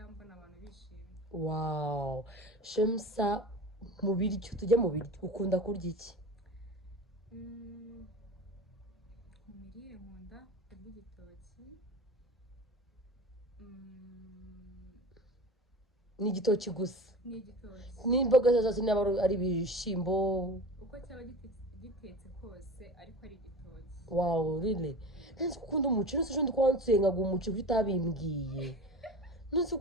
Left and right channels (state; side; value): normal; both; correlation 0.34